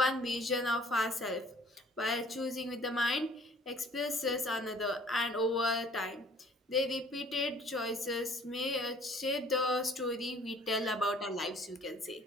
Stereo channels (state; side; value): normal; both; correlation 0.55